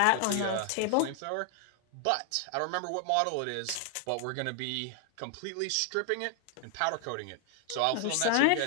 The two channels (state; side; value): different; both; correlation 0.00